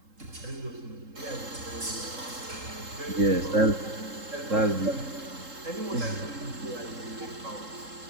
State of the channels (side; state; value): left; late; 3.7 ms